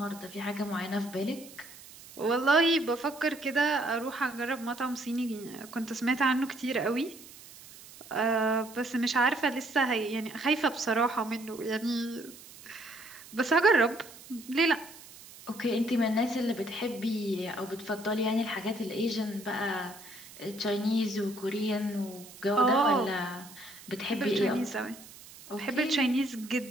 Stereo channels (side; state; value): right; noise; hiss, 19 dB below the sound